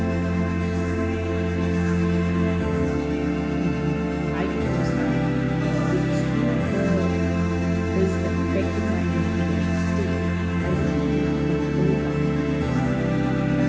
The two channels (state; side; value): identical; both; correlation 1.00